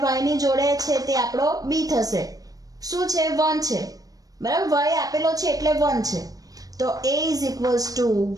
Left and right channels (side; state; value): left; late; 0.18 ms